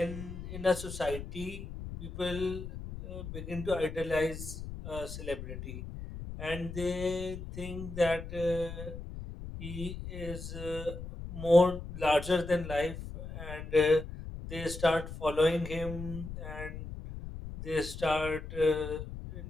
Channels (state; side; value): noise; left; rumble, 9 dB below the sound